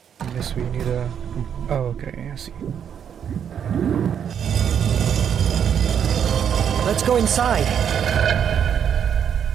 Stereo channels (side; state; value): left; quieter; 8.3 dB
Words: Unless we need a... Oh, okay, I see. Let's go inside.